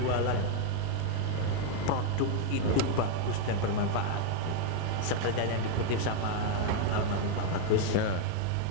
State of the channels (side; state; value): both; different; correlation 0.00